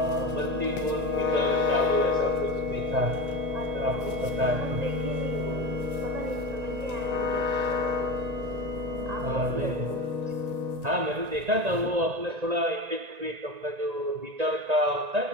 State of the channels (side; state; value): left; late; 1.9 ms